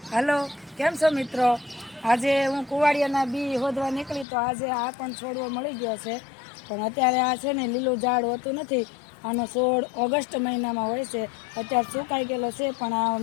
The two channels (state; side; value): drops out; right; at 4.2 s